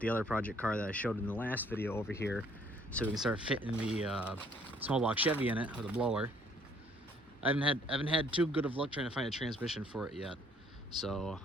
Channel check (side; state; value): both; normal; correlation 0.62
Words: other project car that I showed in the last video over here so we can start fitting the small block Chevy in it with a blower. I haven't had too good of luck trying to find a transmission for it yet, so